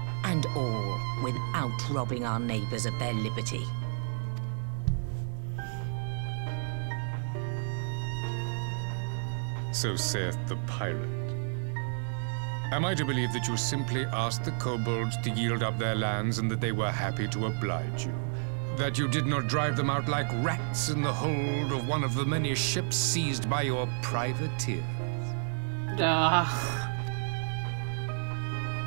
And all without robbing our neighbors of their liberty. So saith the pirate. Am I to believe that you simply asked the kobolds to yield up their lands and that they were happy to oblige you? That you did not drive them out like rats in the hold of one of the many ships seized by your privateers? I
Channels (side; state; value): left; silent; 57 dB below the other